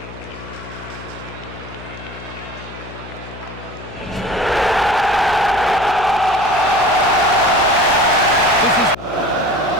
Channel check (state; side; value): noise; left; hum, 14 dB below the sound